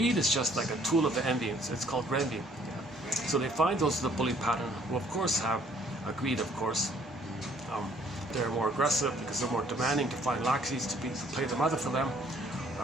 is just like a tool of the envy. It's called envy. Yeah. So they find those of the bully pattern, who of course have a greed, of course. They're more aggressive because they're more demanding to find laxies to play the mother for them.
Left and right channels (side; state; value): both; normal; correlation 0.61